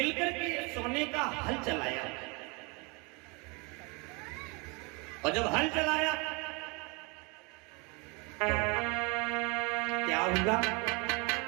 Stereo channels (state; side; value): quieter; left; 29.8 dB